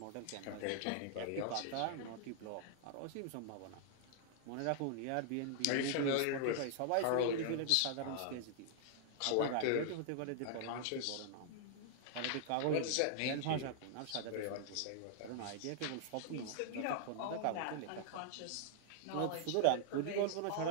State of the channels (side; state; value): both; different; correlation -0.01